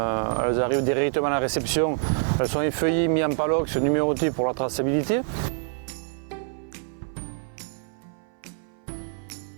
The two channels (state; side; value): silent; left; 59 dB below the other